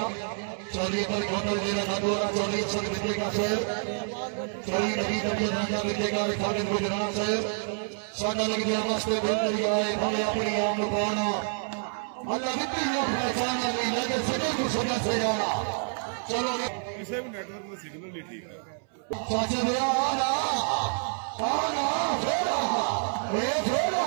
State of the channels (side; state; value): left; silent; 59 dB below the other